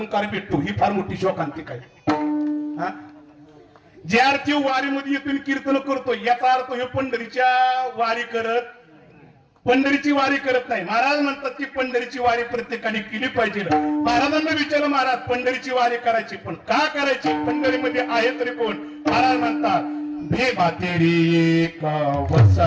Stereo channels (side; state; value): both; identical; correlation 1.00